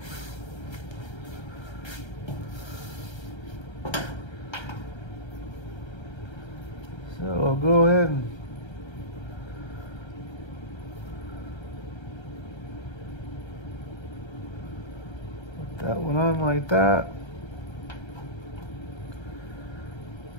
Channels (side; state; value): right; late; 1.3 ms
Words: So I'll go ahead and put that one on like that.